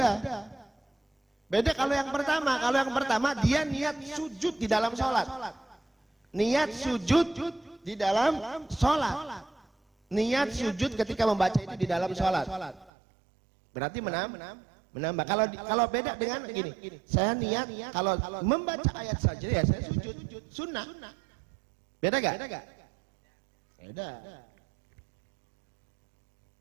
Beda kalau yang pertama, dia niat sujud di dalam sholat. Niat sujud di dalam sholat. Niat sujud ketika membaca itu di dalam sholat. Berarti menambah. Kalau beda dengan gini, saya niat kalau membaca ayat saja ya saya sujud, sunnah. Beda gak? Beda.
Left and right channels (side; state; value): left; drops out; at 12.9 s